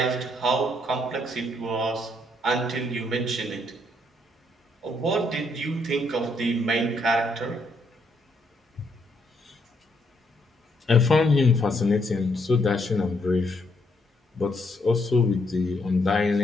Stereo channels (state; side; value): normal; both; correlation 0.74